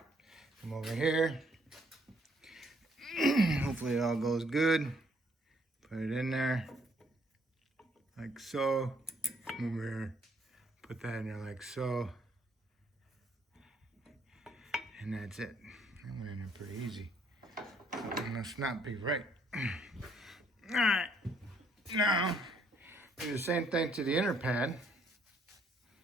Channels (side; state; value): both; normal; correlation 0.67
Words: come over here. Hopefully it all goes good. Put it in there, like so. Come over here, put that in there like so. And that's it. That went in there pretty easy. Something must not be right. Alright, now do the same thing to the inner pad.